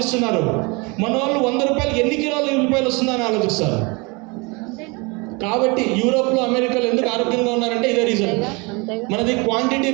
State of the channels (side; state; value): left; quieter; 28.4 dB